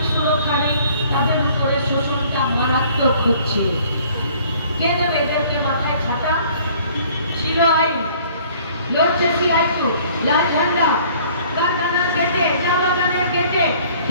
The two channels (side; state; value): both; inverted; correlation -0.55